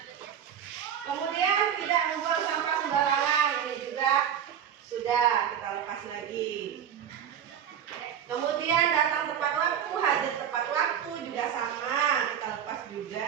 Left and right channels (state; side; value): quieter; left; 8.9 dB